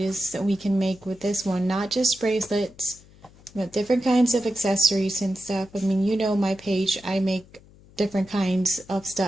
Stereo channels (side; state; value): left; noise; hum, 25 dB below the sound